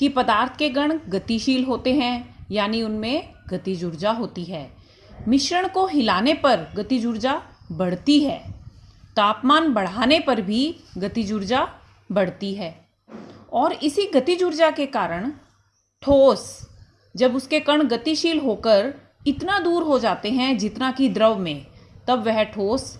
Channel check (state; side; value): identical; both; correlation 1.00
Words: पदार्थ के कण गतिशील होते हैं, यानी उनमें गतिज ऊर्जा होती है। मिश्रण को हिलाने पर गतिज ऊर्जा बढ़ती है। तापमान बढ़ाने पर भी गतिज ऊर्जा बढ़ती है। और इसी गतिज ऊर्जा के कारण ठोस, जब उसके कण गतिशील होकर इतना दूर हो जाते हैं जितना कि द्रव में, तब वह ठोस